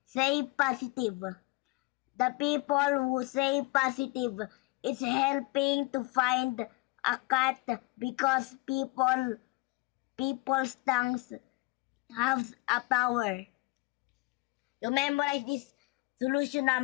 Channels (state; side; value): quieter; right; 24.9 dB